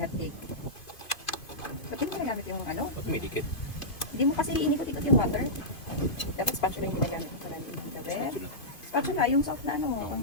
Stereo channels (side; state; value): right; late; 2.5 ms